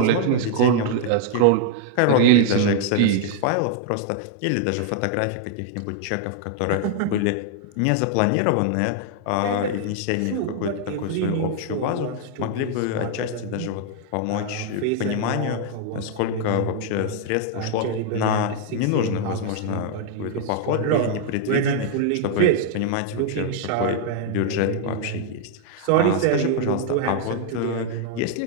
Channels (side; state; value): both; different; correlation 0.00